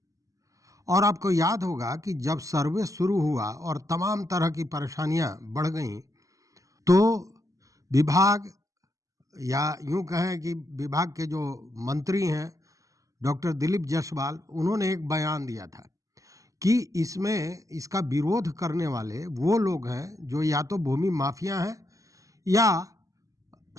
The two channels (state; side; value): late; left; 0.16 ms